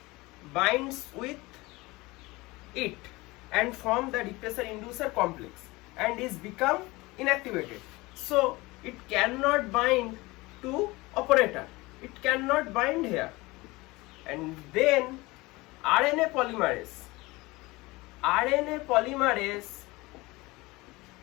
binds with it and form the repressor inducer complex and is become inactivated. So it cannot bind to operator, it cannot bind here, and then RNA polymerase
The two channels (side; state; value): right; quieter; 22.0 dB